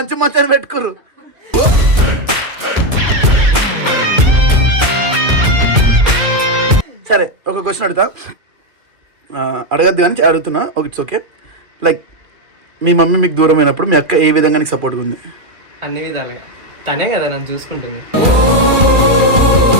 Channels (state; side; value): late; left; 2.4 ms